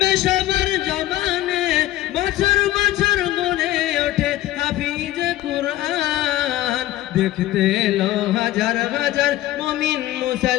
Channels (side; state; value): right; quieter; 15.0 dB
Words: সবার জবানে, বছর বছর গড়ে ওঠে হাফিজে কুরআন। দেখতে এলো হাজার হাজার মুমিন